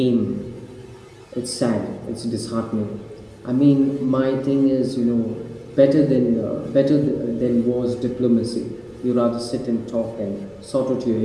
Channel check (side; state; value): both; identical; correlation 1.00